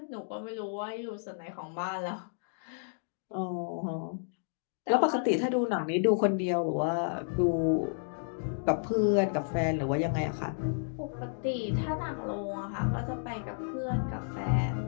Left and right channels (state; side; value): silent; right; digital silence